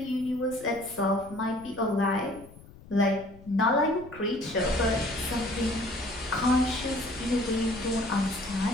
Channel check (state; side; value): noise; left; rumble, 21 dB below the sound